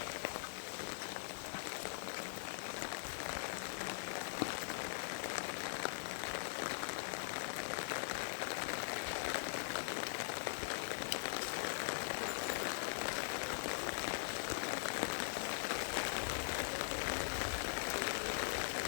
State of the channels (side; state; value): right; silent; digital silence